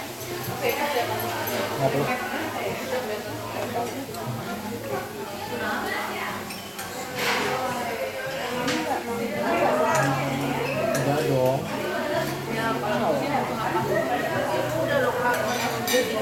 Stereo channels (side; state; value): both; identical; correlation 1.00